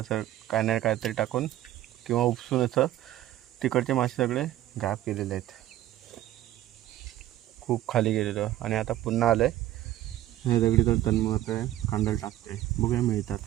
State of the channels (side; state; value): left; quieter; 13.8 dB